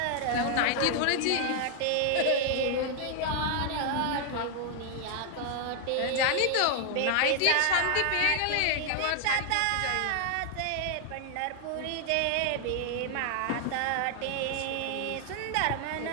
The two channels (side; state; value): both; different; correlation 0.00